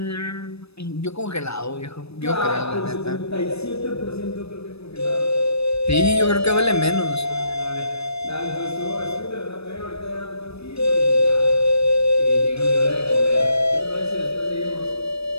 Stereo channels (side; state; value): right; late; 0.78 ms